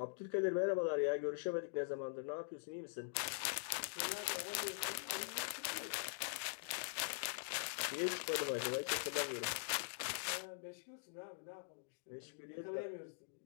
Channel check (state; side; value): silent; right; digital silence